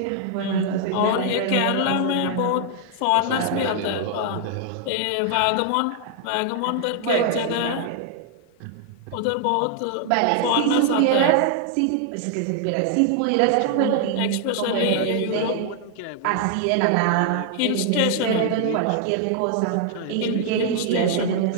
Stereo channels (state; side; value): different; both; correlation 0.00